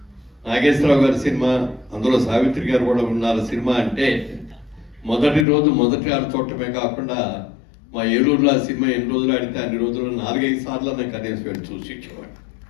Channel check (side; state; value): right; drops out; at 5.5 s